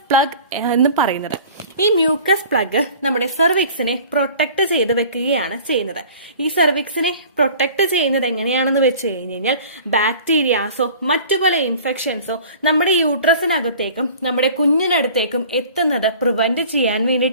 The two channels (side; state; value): both; inverted; correlation -0.45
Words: പ്ലഗ് എന്ന് പറയുന്നത്. ഈ മ്യൂക്കസ് പ്ലഗ് നമ്മുടെ സെർവിക്സിനെ പ്രൊട്ടക്ട് ചെയ്ത് വെക്കുകയാണ് ചെയ്യുന്നത്. ഈ സെർവിക്സിനെ പ്രൊട്ടക്ട് ചെയ്യുന്നത് എങ്ങനെയാണെന്ന് വെച്ച് കഴിഞ്ഞാൽ, ബാക്ടീരിയാസോ മറ്റു പല ഇൻഫെക്ഷൻസോ നമ്മുടെ യൂട്രസിനകത്തേക്കും നമ്മുടെ കുഞ്ഞിനടുത്തേക്കും എത്തുന്നത് പ്രിവെന്റ് ചെയ്യാൻ